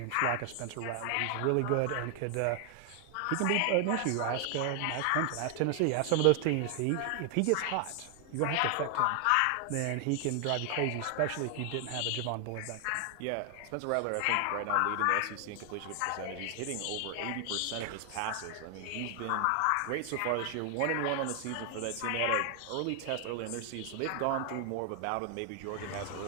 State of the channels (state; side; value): different; both; correlation 0.00